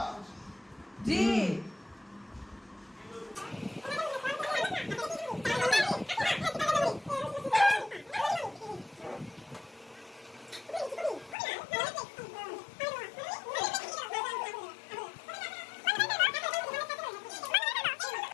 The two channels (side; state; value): right; drops out; at 11.4 s